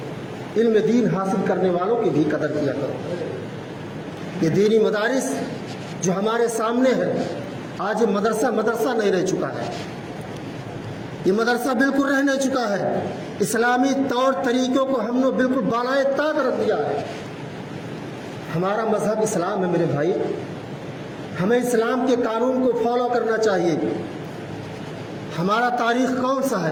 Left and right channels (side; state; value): both; identical; correlation 1.00